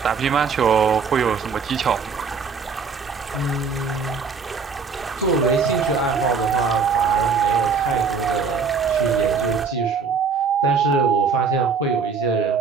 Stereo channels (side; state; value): left; quieter; 5.5 dB